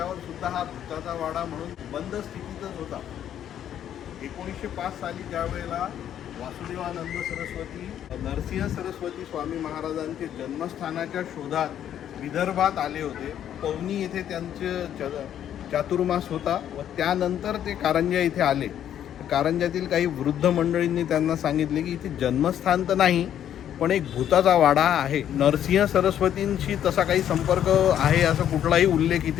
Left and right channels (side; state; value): right; quieter; 10.3 dB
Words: सुद्धा हा भूताचा वाडा म्हणून बंद स्थितीतच होता। 1905 साली ज्यावेळेला वासुदेवानंद सरस्वती नरसिंह सरस्वती स्वामी महाराजांचे जन्मस्थानाच्या शोधात विदर्भात आले होते। पवनी येथे त्यांचे चातुर्मास होता व त्यानंतर ते कारंजा इथे आले। कारंजातील काही वृद्ध मंडळींनी त्यांना सांगितले की इथे जन्मस्थान तर नाही पण एक भूताचा वाडा आहे। नरसिंह सरस्वतींशी तसा काही संपर्क आहे असा कुठलाही उल्लेख